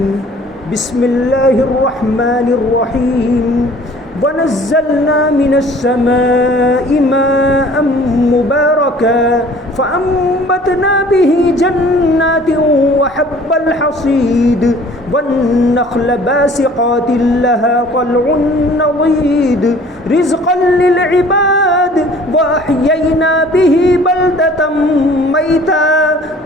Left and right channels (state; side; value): normal; both; correlation 0.51